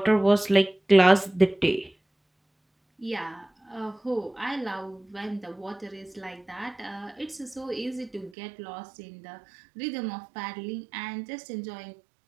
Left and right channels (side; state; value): left; drops out; at 8.3 s